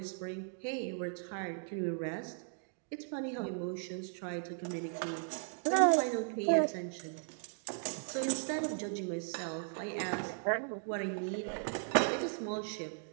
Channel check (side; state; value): left; silent; 53 dB below the other